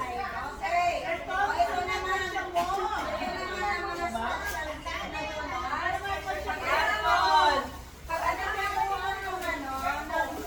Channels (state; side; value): identical; both; correlation 1.00